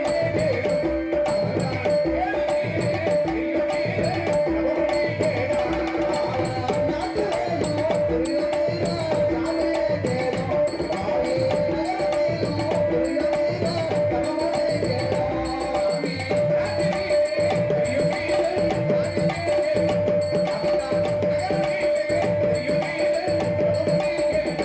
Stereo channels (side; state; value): both; identical; correlation 1.00